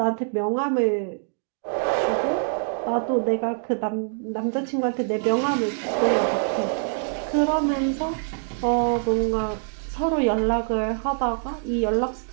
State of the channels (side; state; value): left; silent; digital silence